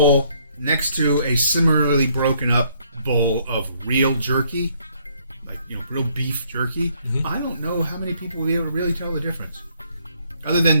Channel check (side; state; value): both; inverted; correlation -0.67